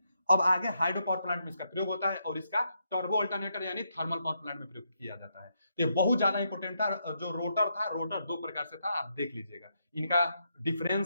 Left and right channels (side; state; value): both; inverted; correlation -0.80